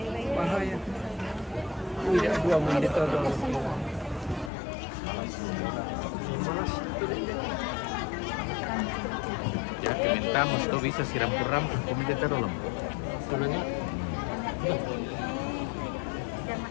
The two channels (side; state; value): right; drops out; at 4.5 s